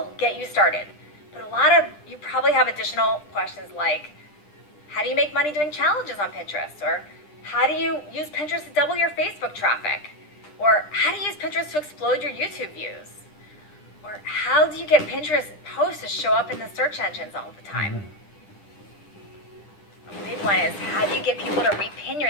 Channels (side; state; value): right; late; 9.9 ms